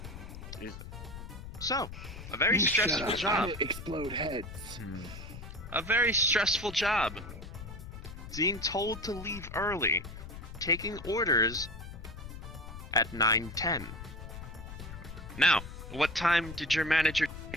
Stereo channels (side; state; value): left; noise; rumble, 11 dB below the sound